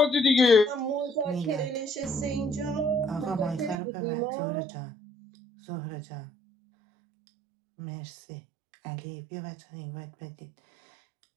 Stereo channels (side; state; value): left; drops out; at 3.8 s